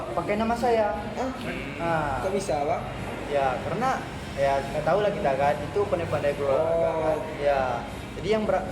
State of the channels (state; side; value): identical; both; correlation 1.00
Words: pakai nama saya. Nah, Kok bisa, Bang? ya karena ya nggak tahu lah kita kan itu pandai-pandai guru olahraga kan. Ya, jadi